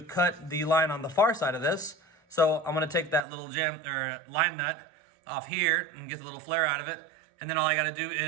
cut the line on the far side of this. So I'm gonna take that little line nut off here and get the little flare out of it. And then all I gotta do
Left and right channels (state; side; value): drops out; left; at 3.2 s